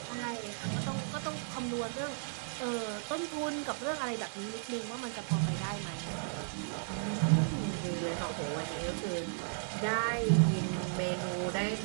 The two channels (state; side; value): silent; left; 55 dB below the other